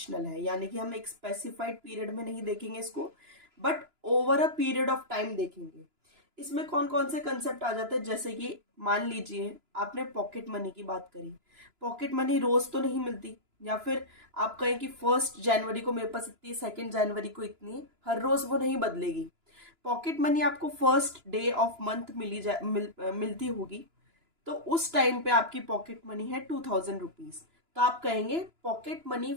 है। यानी कि हम एक स्पेसिफाइड पीरियड में नहीं देखेंगे इसको, but over a period of time देखेंगे। इसमें कौन कौन से कंसेप्ट आ जाते हैं, जैसे कि मान लीजिए आपने पॉकेट मनी की बात करी। पॉकेट मनी रोज तो नहीं मिलती, या फिर आप कहें कि 1 जनवरी को मेरे पास इतनी है, 2 जनवरी को इतनी है, हर रोज वो नहीं बदलेगी। पॉकेट मनी आपको फर्स्ट डे ऑफ मंथ मिलती होगी, तो उस टाइम पे आपकी पॉकेट मनी है 2,000 रुपीज। तो आप कहेंगे pocket money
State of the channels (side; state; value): left; late; 2.9 ms